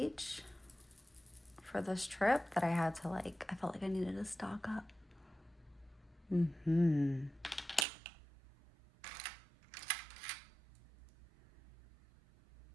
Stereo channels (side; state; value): left; drops out; at 7.9 s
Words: for this trip that I had to I felt like I needed to stock up. And